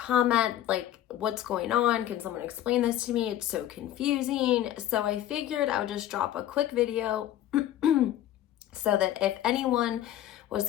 like, what's going on? Can someone explain this to me? It's so confusing. So I figured I would just drop a quick video so that if anyone was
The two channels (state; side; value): quieter; right; 12.3 dB